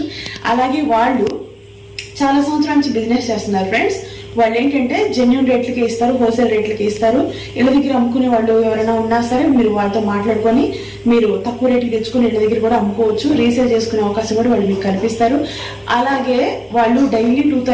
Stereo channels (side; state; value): both; identical; correlation 1.00